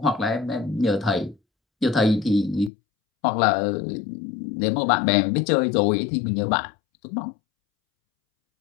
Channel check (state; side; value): drops out; right; at 2.7 s